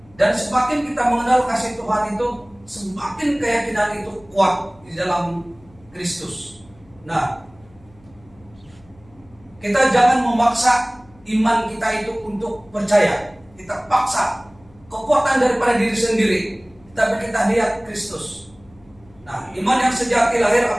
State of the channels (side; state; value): left; noise; hum, 28 dB below the sound